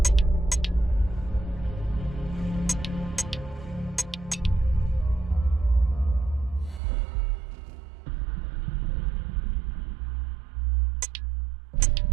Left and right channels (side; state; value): left; drops out; at 6.8 s